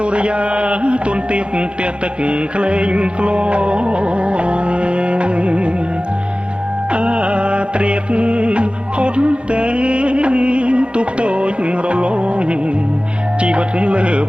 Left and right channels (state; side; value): late; left; 0.057 ms